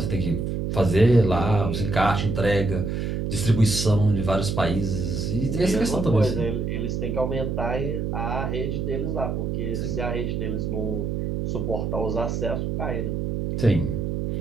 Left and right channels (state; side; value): noise; right; hum, 1 dB below the sound